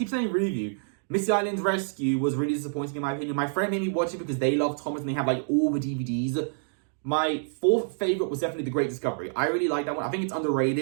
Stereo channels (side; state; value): left; silent; digital silence